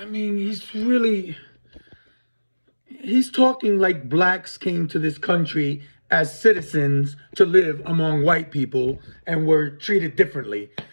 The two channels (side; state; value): both; inverted; correlation -1.00